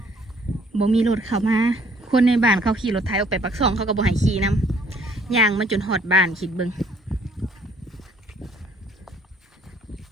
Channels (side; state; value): both; normal; correlation 0.61